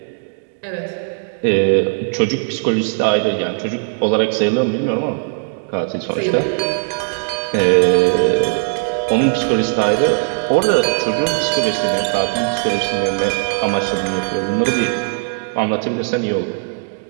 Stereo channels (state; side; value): silent; left; digital silence